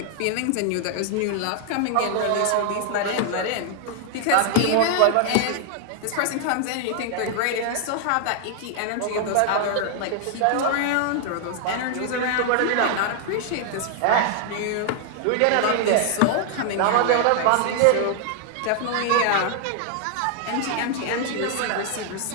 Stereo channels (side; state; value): both; different; correlation 0.00